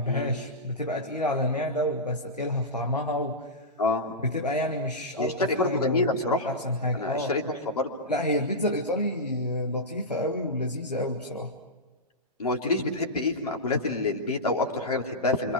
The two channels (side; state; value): both; normal; correlation -0.13